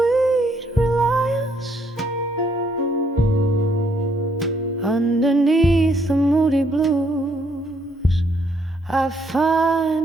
reliance. Underneath the moody blues, I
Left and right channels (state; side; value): normal; both; correlation 0.70